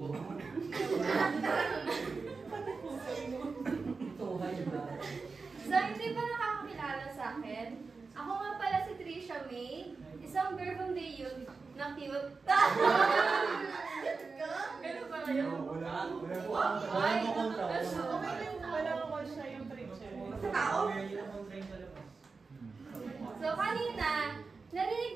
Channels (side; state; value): left; quieter; 4.4 dB